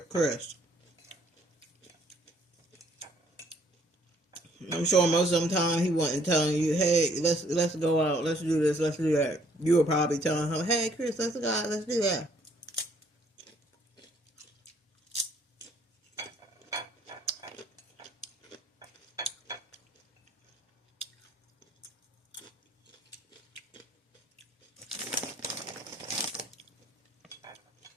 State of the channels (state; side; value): normal; both; correlation 0.63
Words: Chris. I'm sure most of the time he wasn't telling you, hey, let's go out, let's do this, let's do that. You were probably telling him, hey, Chris, let's go out, let's do that.